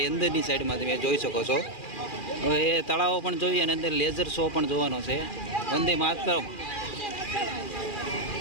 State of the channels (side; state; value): right; late; 2.4 ms